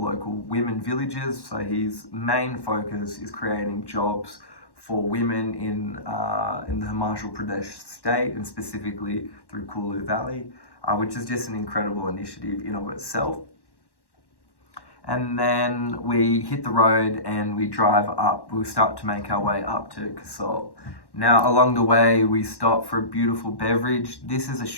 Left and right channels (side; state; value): right; late; 1.1 ms